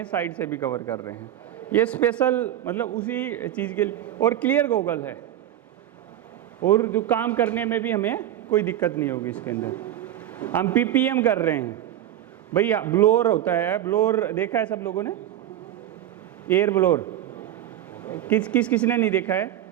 साइड से भी कवर कर रहे हैं। ये स्पेशल मतलब उसी चीज़ के लिए, और क्लियर गोगल है, और जो काम करने में भी हमें कोई दिक्कत नहीं होगी इसके अंदर। हम PPM कर रहे हैं भैया, ब्लोअर होता है, ब्लोअर देखा है सब लोगों ने, एयर ब्लोअर, किसने नहीं देखा है?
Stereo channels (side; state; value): left; quieter; 11.9 dB